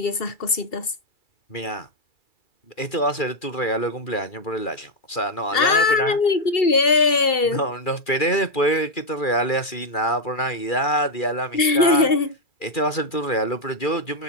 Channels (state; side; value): late; right; 2.7 ms